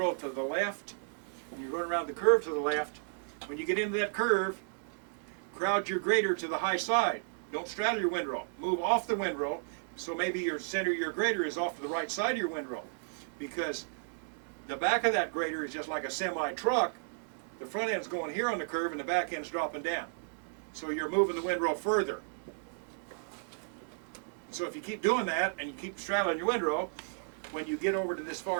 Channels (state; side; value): silent; left; digital silence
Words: to the left, and you're going around the curve to the left, when you get into that curve, crowd your grader to the high side. Don't straddle your windrow. Move off the windrow, so maybe your center of your grader is off to the right side of your windrow. Because the back of that grader is just like a semi-truck. The front end's going here on the curve and the back end's dropping down. So you're moving the windrow further. So if you keep doing that and you keep straddling your windrow, when you get over to this